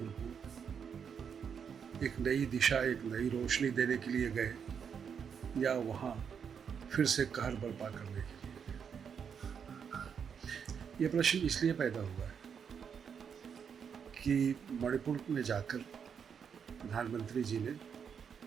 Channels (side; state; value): left; quieter; 7.1 dB